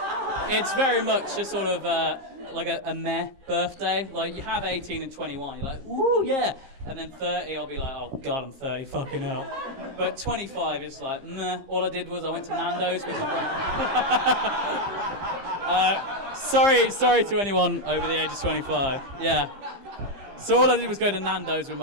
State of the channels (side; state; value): left; late; 15 ms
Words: it's very much a sort of like a meh birthday. Like you have 18 and 21, you're like, ooh, yeah. And then 30, I'll be like, oh God, I'm 30, fucking hell. But 25 is like, meh. All I did was I went to Nando's with my brother. Sorry to anyone over the age of 25. Yeah. So all I did was go to Nando's with